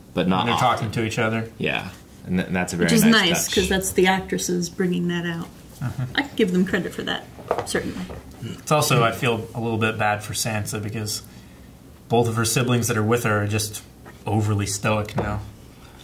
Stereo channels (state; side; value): identical; both; correlation 1.00